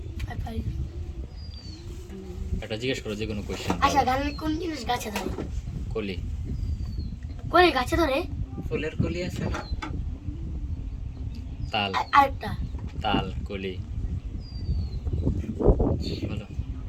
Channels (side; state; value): both; identical; correlation 1.00